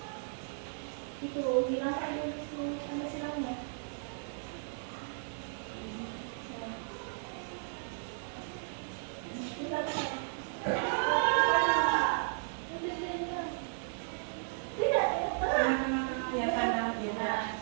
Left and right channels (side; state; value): left; silent; digital silence